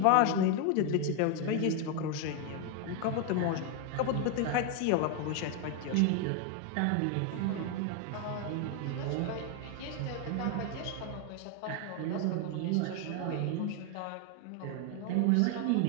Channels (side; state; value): both; different; correlation 0.01